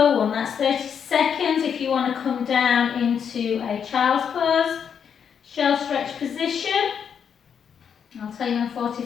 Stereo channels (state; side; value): quieter; right; 7.5 dB